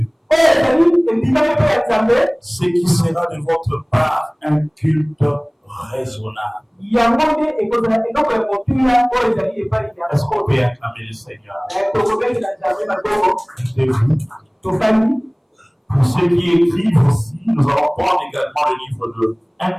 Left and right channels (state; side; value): identical; both; correlation 1.00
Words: ce qui sera de votre part un culte raisonnable. Est-ce qu'on peut acclamer le Seigneur? Pour ceux qui écrivent aussi, nous allons prendre également le livre de 1